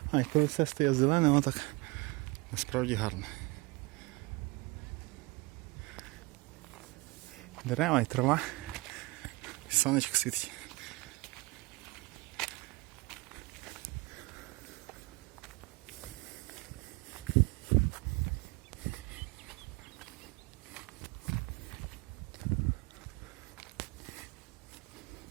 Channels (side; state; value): left; quieter; 24.4 dB